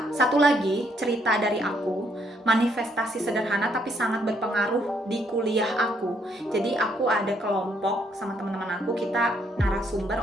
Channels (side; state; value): both; normal; correlation 0.71